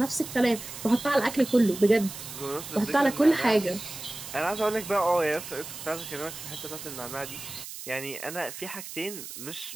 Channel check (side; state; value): right; noise; hiss, 11 dB below the sound